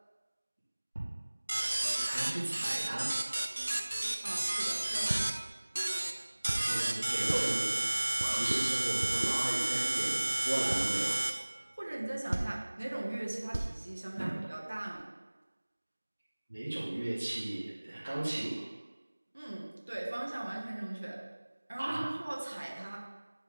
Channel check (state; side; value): inverted; both; correlation -1.00